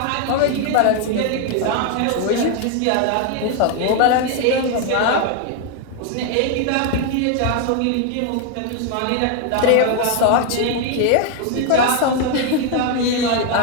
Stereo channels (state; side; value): different; both; correlation 0.01